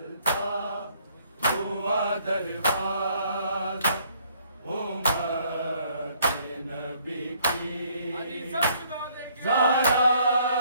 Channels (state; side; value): inverted; both; correlation -0.64